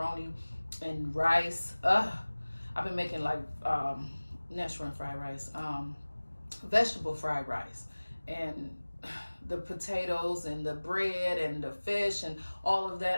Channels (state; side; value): inverted; both; correlation -1.00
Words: and rice. I've been making like natural fried rice, vegetable fried rice, and the potatoes and the bread and the fish and all of